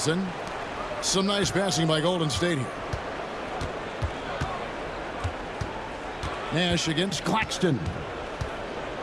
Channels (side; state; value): both; identical; correlation 1.00